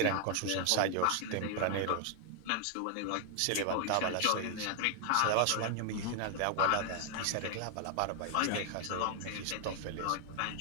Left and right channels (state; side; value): different; both; correlation 0.00